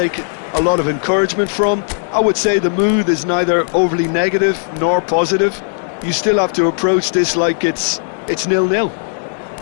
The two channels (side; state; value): right; silent; digital silence